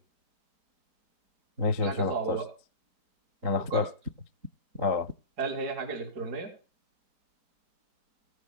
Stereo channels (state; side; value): late; left; 3.9 ms